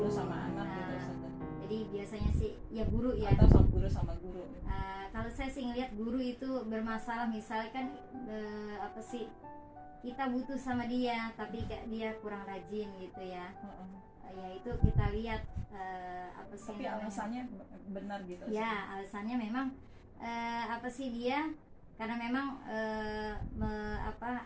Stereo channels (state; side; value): identical; both; correlation 1.00